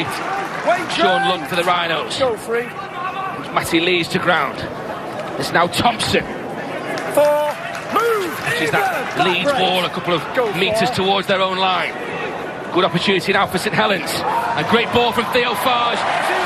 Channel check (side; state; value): both; identical; correlation 1.00